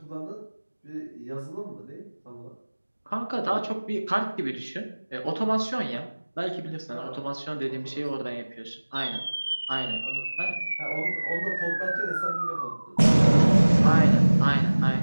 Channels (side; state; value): both; inverted; correlation -1.00